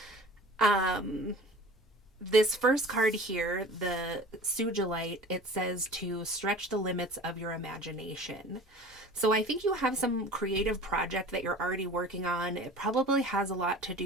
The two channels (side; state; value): both; normal; correlation 0.42